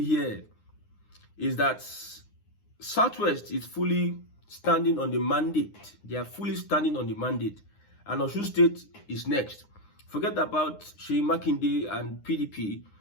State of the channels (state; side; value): late; right; 9.7 ms